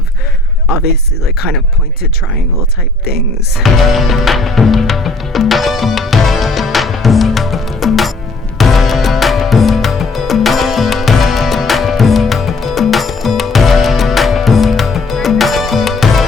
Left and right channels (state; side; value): quieter; right; 3.3 dB